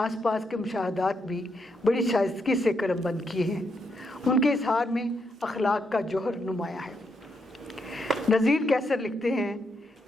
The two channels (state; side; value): normal; both; correlation 0.79